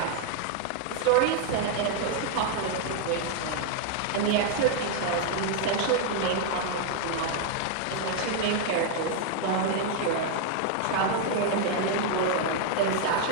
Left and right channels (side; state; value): both; different; correlation 0.00